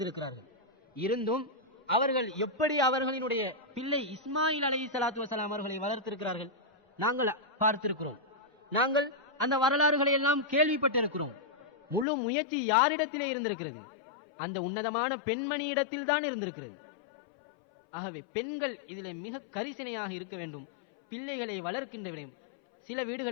இருந்தும் அவர்கள் எப்படி அவர்களினுடைய பிள்ளை இஸ்மாயில் அலைஹிஸ்ஸலாத்து வஸலாம் அவர்களை வளர்த்திருக்கிறார்கள் நாங்கள் பார்த்திருக்கிறோம். நாங்கள் அந்த வரலாறுகளை எல்லாம் கேள்விப்பட்டிருக்கிறோம். முழு முயற்சி யாரிடத்திலே இருந்திருக்கிறது? அந்த உன்னதமான பெண்மணி இடத்தில் தான் இருந்திருக்கிறது. ஆகவே பெண்கள் இதில் மிக கரிசனையாக இருக்க வேண்டும். பிள்ளைகளை வளர்க்கின்ற விடயம். சில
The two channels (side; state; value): right; drops out; at 12.1 s